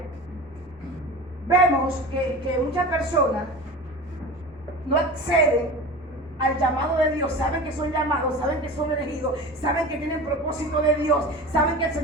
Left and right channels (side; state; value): both; normal; correlation 0.33